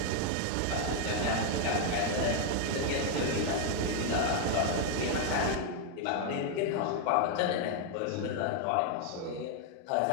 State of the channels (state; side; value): different; both; correlation 0.00